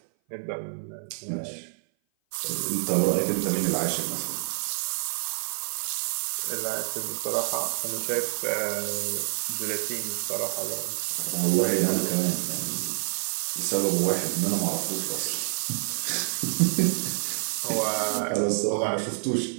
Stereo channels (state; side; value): silent; left; 56 dB below the other